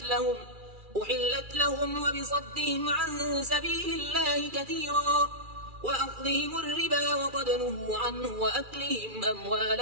أحلت لهم وبصدهم عن سبيل الله كثيرا وأخذهم الربا وقد نهوا عنه وأكلهم أموال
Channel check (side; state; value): left; late; 2.4 ms